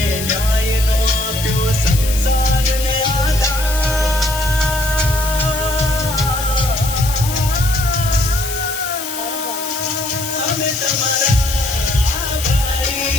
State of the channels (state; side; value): noise; left; hiss, 7 dB below the sound